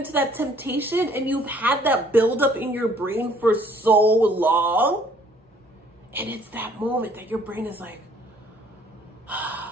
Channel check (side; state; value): both; normal; correlation 0.59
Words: that temptation and you've had that build up in your brain for so long, and it's that moment that your brain is like,